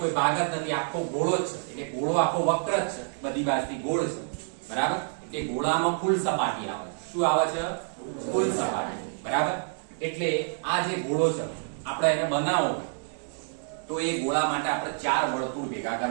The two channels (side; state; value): left; silent; 59 dB below the other